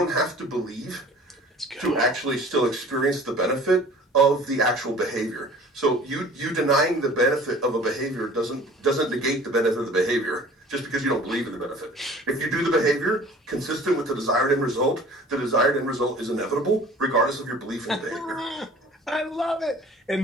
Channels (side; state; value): both; normal; correlation 0.47